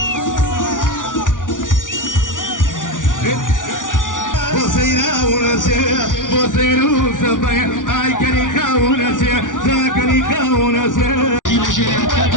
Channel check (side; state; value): right; late; 0.88 ms